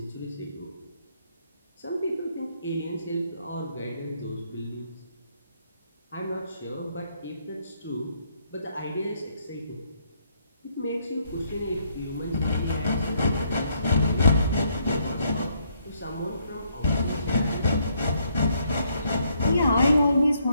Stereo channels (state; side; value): inverted; both; correlation -0.71